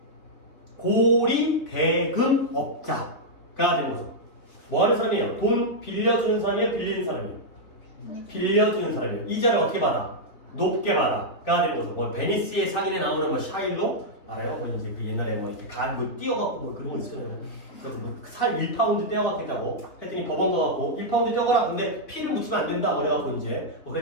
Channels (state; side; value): late; right; 3.7 ms